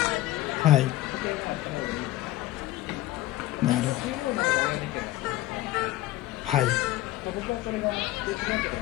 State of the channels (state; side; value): quieter; right; 16.5 dB